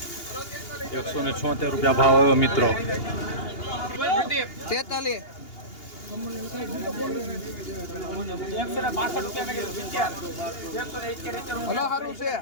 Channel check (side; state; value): right; late; 2.8 ms